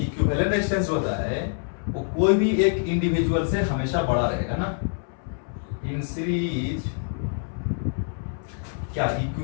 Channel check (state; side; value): silent; right; 61 dB below the other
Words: इक्विवेलेंट रेजिस्टेंस जो होता है वो कोई भी एक इंडिविजुअल से हमेशा बड़ा रहेगा ना। इन सीरीज क्या